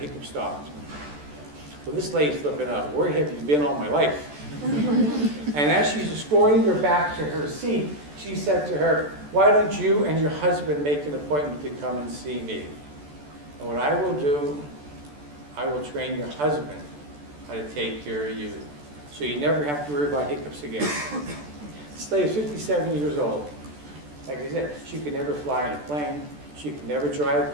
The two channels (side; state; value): left; late; 14 ms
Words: stopped. Well, this lady's flipping out. Where have you been all my life? And as she's escorting her back to her seat, she said to her, why don't you and your husband make an appointment to come and see me? And what I will do, I will train your husband how to take care of you. So you never have to worry about hiccups again. This lady is 57 years old. Like I said, she could never fly in a plane. She could never drive a